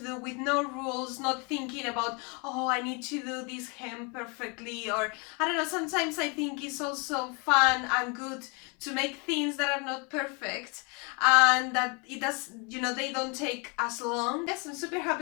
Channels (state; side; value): quieter; right; 32.5 dB